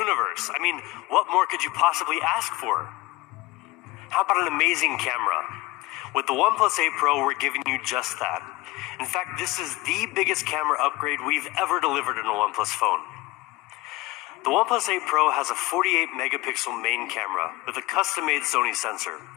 I mean, what more could you possibly ask for? How about an amazing camera? With the OnePlus 8 Pro, we're giving you just that. In fact, this is the biggest camera upgrade we've ever delivered in a OnePlus phone. The OnePlus 8 Pro has a 48 megapixel main camera with a custom-made Sony sensor,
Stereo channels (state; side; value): quieter; right; 19.9 dB